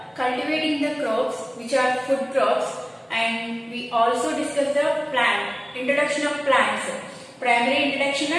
cultivating the crops which are food crops, and we also discuss the introduction of plants, primary introduction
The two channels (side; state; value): both; identical; correlation 1.00